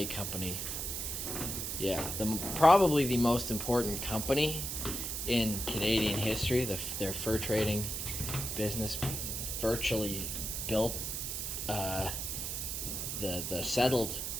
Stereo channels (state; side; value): noise; right; hiss, 3 dB below the sound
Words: Company, yeah, probably the most important company in Canadian history. Their fur trading business virtually built the settled